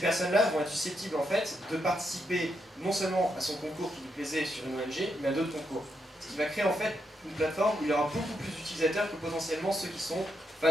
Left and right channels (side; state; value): both; normal; correlation 0.81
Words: vont être susceptibles en fait de participer non seulement à son concours qui lui plaisait sur une ONG, mais à d'autres concours. Ce qui va créer en fait une plateforme où il y aura beaucoup plus d'utilisateurs que potentiellement ceux qui sont